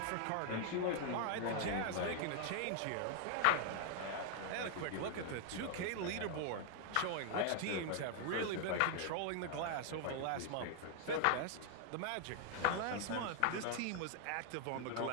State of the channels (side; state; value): both; different; correlation 0.00